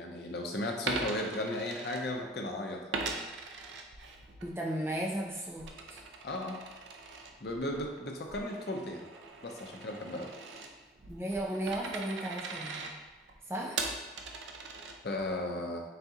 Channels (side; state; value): both; normal; correlation 0.42